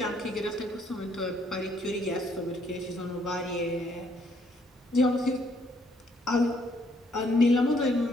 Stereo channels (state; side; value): normal; both; correlation 0.68